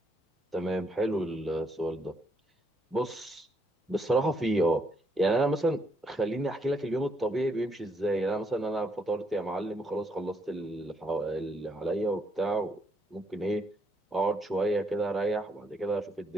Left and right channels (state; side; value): normal; both; correlation 0.74